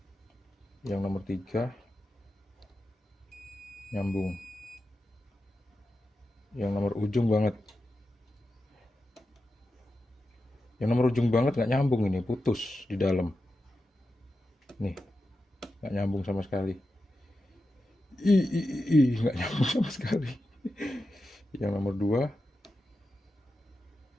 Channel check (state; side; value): normal; both; correlation 0.90